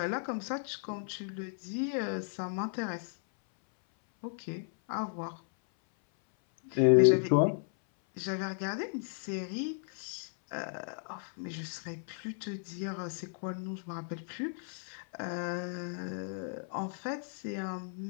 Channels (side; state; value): right; silent; 55 dB below the other